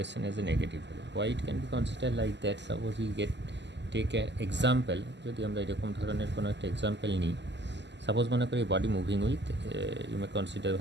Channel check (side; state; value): left; late; 0.51 ms